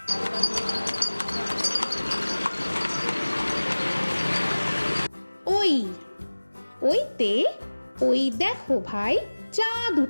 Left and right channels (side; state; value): both; inverted; correlation -1.00